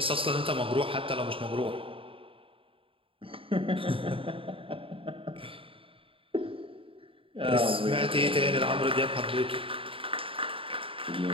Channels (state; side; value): late; left; 0.26 ms